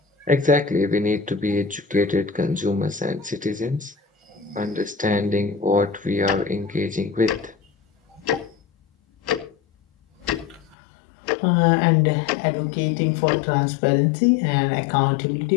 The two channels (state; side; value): drops out; right; at 10.8 s